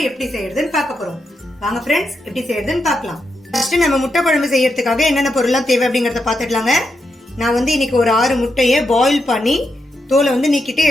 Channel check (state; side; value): normal; both; correlation 0.84